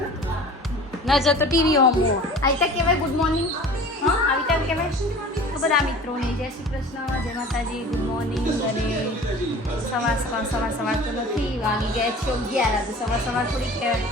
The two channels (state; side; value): normal; both; correlation 0.42